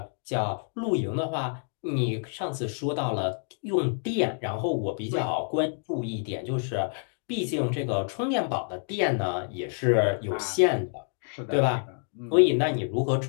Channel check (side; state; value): right; silent; 59 dB below the other